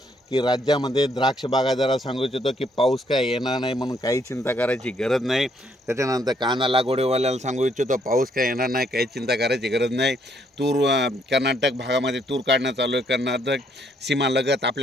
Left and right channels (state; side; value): normal; both; correlation 0.70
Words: की राज्यामध्ये द्राक्ष बागायतदाराला सांगू इच्छितो की पाऊस काय येणार नाही, म्हणून काही चिंता करायची गरज नाही। त्याच्यानंतर कांदा लागवडीवाल्याला सांगू इच्छितो पाऊस काय येणार नाही, काही चिंता करायची गरज नाही। तूर कर्नाटक भागामध्ये तूर काढणं चालू आहे, कर्नाटक सीमालगत